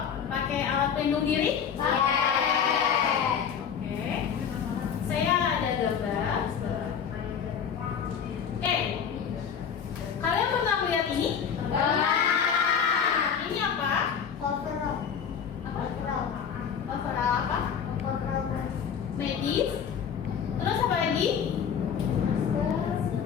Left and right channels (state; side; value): quieter; right; 7.4 dB